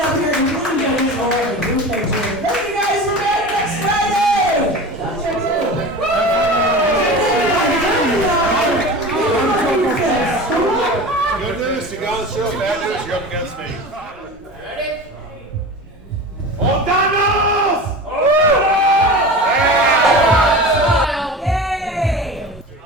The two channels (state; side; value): normal; both; correlation 0.32